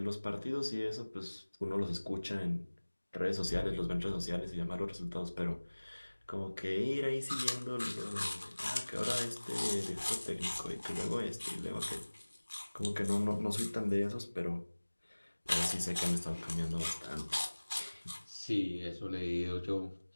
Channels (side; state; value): both; inverted; correlation -1.00